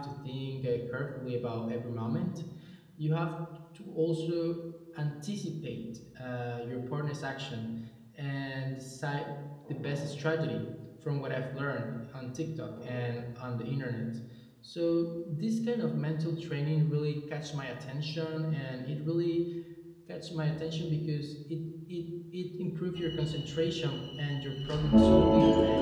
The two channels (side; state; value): both; identical; correlation 1.00